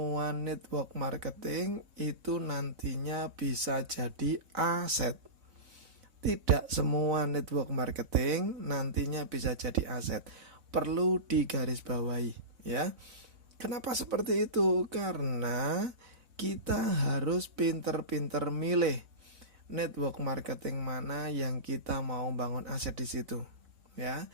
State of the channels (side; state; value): left; late; 3.6 ms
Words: network marketing itu nantinya bisa jadi aset. Tidak semua network marketing nantinya bisa jadi aset. Perlu digarisbawahi, ya. Kenapa seperti itu? Karena kita harus pinter-pinter milih network marketing mana yang kita mau bangun aset di situ, ya.